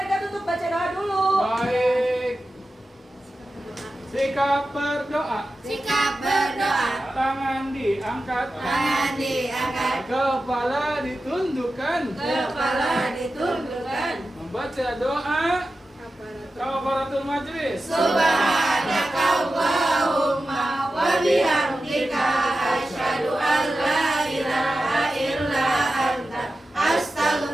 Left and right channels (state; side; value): normal; both; correlation 0.93